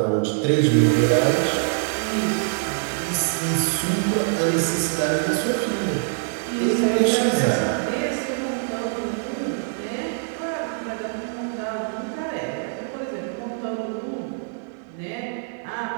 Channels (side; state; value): left; silent; digital silence